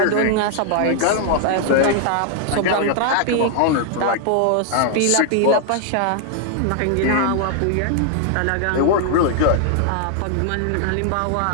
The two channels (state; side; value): different; both; correlation 0.00